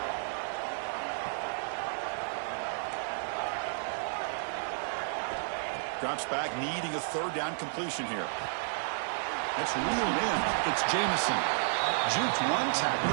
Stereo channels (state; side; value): silent; left; digital silence